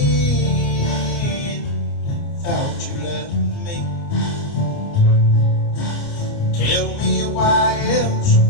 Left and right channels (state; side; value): late; right; 29 ms